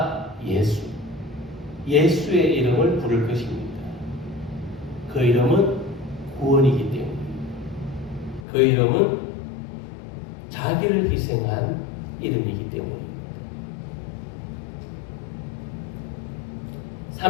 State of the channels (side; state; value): right; drops out; at 8.4 s